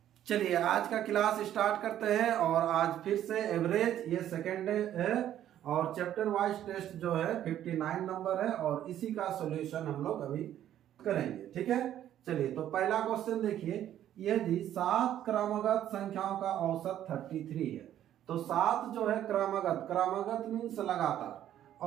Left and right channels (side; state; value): left; quieter; 11.4 dB